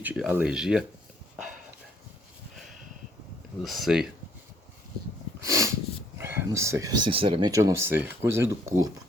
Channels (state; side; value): normal; both; correlation 0.65